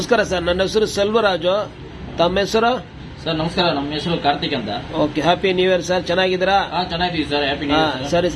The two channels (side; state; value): both; identical; correlation 1.00